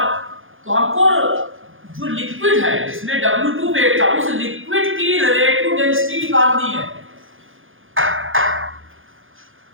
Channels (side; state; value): left; late; 0.58 ms